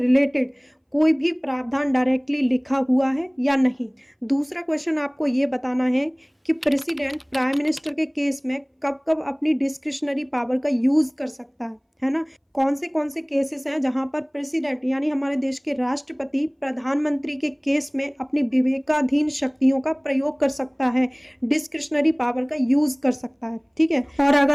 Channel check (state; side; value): identical; both; correlation 1.00